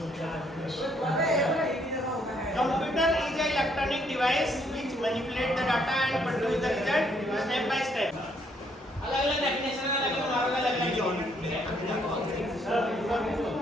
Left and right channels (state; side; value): normal; both; correlation 0.69